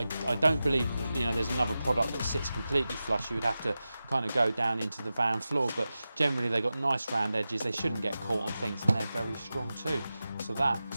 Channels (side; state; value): both; inverted; correlation -0.94